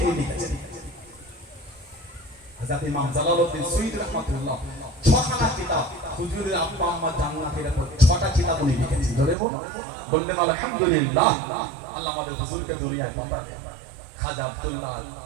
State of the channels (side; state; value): left; drops out; at 9.3 s